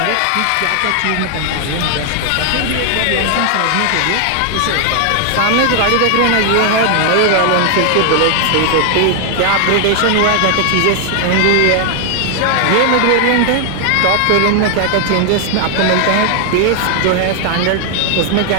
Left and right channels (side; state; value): both; different; correlation 0.00